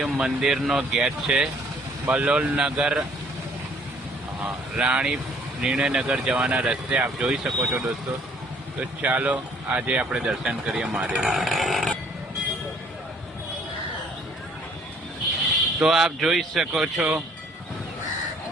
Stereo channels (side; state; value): both; normal; correlation 0.60